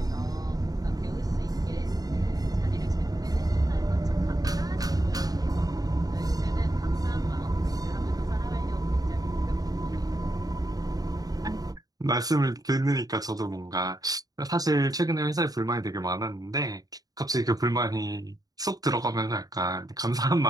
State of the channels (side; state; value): left; late; 0.18 ms